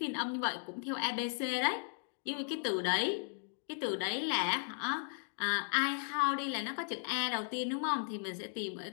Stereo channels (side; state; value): right; silent; 54 dB below the other